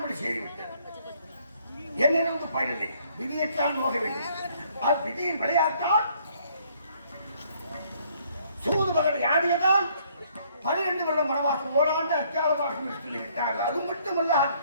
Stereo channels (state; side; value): inverted; both; correlation -0.65